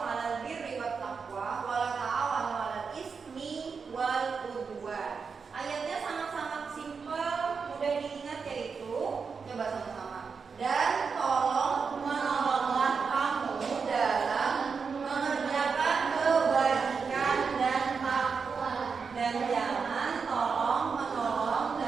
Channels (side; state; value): left; quieter; 5.5 dB